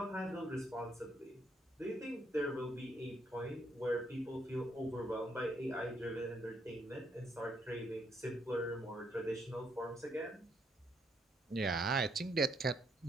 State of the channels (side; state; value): both; normal; correlation 0.73